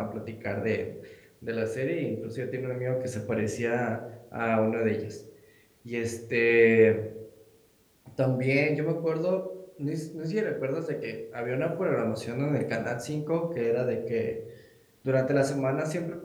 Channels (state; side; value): identical; both; correlation 1.00